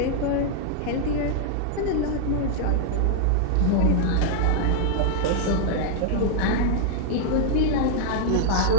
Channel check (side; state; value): both; different; correlation -0.01